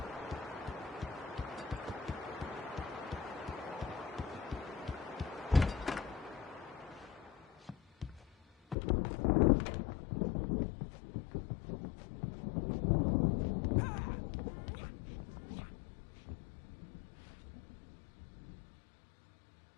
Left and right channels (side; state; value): right; drops out; at 8.8 s